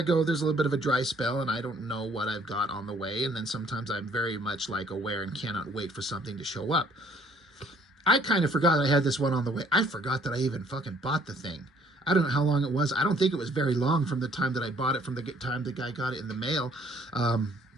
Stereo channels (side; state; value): both; normal; correlation 0.61